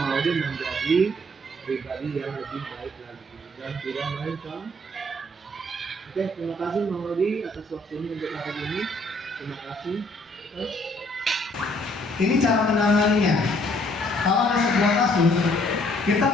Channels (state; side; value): normal; both; correlation 0.63